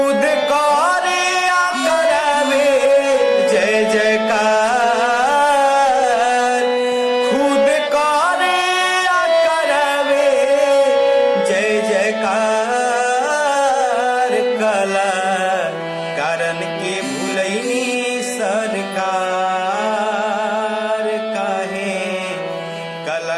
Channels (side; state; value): both; identical; correlation 1.00